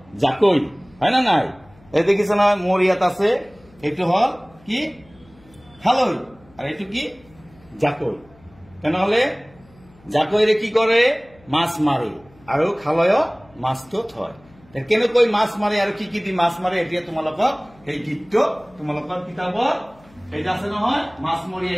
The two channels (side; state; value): left; noise; hum, 28 dB below the sound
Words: জাকৈ, হয় না নাই? এই দেখিছ না মোর ইয়াত আছে, এইটো হল কি খালৈ আর এইটো কি জাকৈ। তেনেহলে জাকৈরে কি করে, মাছ মারে, আর খালয় মাছটো থয়। কেনেকৈ মাছ মারে আর কি দি মাছ মারে, এতিয়া তোমালোকক এই গীতটো তোমালোকৰ কিতাপত এইটা আছে নহয়, মাছ